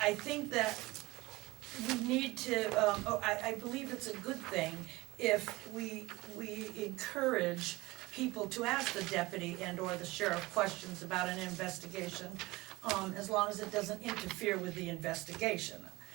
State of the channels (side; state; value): left; quieter; 20.8 dB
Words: I think that we need to, I believe it's a good thing if we encourage people to ask the deputy and or the sheriff questions about an investigation, as long as it doesn't interfere with the investigation.